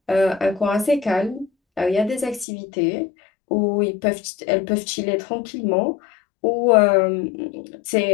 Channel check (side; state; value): right; drops out; at 2.5 s